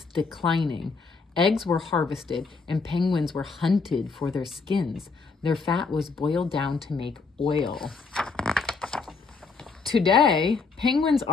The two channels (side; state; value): right; quieter; 4.5 dB